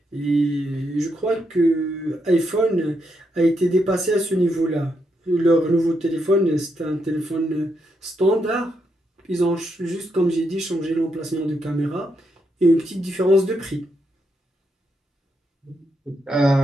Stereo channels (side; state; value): both; normal; correlation 0.80